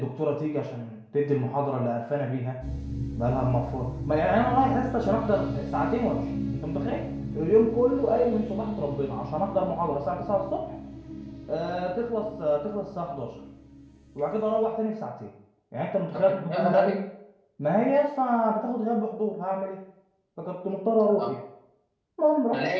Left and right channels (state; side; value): identical; both; correlation 1.00